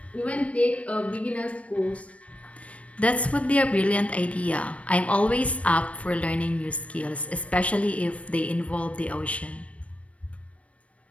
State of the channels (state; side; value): late; right; 0.064 ms